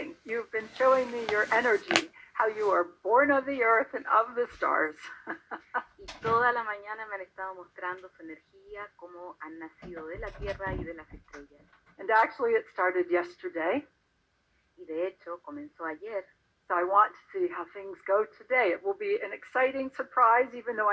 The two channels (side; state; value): both; identical; correlation 1.00